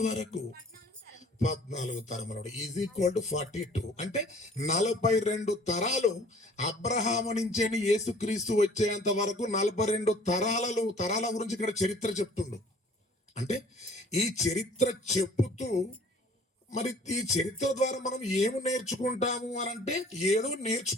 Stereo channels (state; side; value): normal; both; correlation 0.52